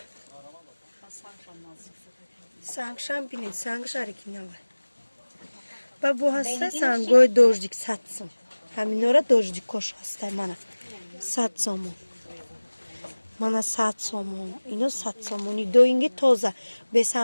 Сангшам бинед, сангш оригинал. Ба бо ҳаста сангои дождик 100 сом. Ҳаминора дождикош ҳастай mana 100 сомон. Mana 100 сомон. Ино 100 сомони доинги тоза.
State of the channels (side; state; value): both; inverted; correlation -1.00